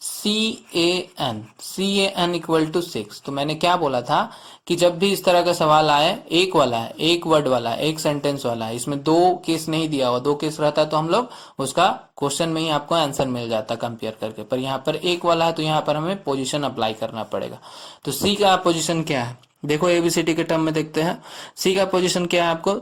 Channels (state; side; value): identical; both; correlation 1.00